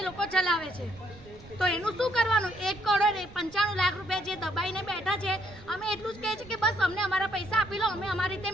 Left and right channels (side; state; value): right; noise; rumble, 20 dB below the sound